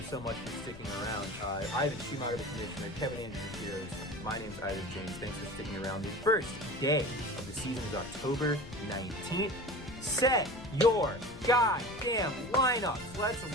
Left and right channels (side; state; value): left; noise; rumble, 16 dB below the sound